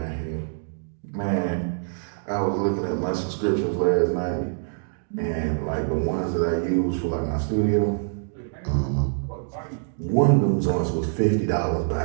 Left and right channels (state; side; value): silent; left; digital silence